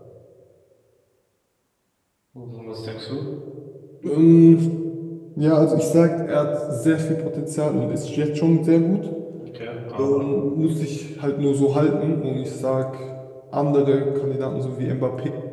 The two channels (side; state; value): both; identical; correlation 1.00